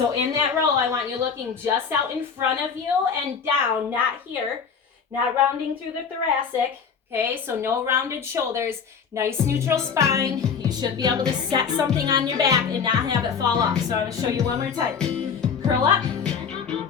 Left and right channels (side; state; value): right; quieter; 6.4 dB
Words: in that row, I want you looking just out in front of you and down, not here, not rounding through the thoracic. Okay, so no rounded shoulders, nice neutral spine. You should be able to set something on your back and not have it fall off. So I'm gonna show you one more time. Curl up,